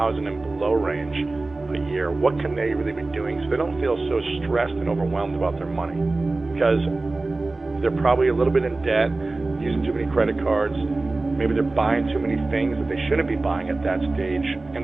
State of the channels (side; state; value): left; quieter; 3.2 dB